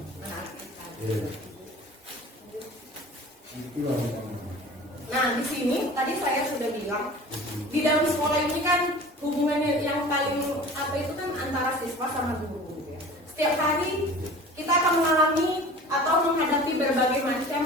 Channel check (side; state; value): both; normal; correlation 0.41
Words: kita. Nah di sini tadi saya sudah bilang di dalam sekolah ini kan hubungannya yang paling apa itu kan antara siswa sama guru. Ya. Setiap hari kita akan mengalami atau menghadapi berbagai macam